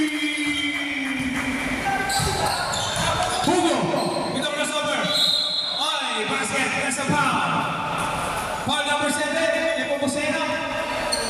Hugo, ito crossover. Oy, basket, nasa foul. Foul number 7, Nepomuceno.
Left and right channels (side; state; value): both; identical; correlation 1.00